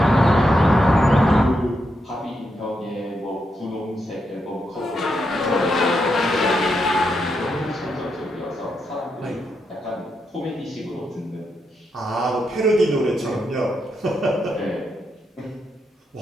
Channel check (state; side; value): normal; both; correlation 0.82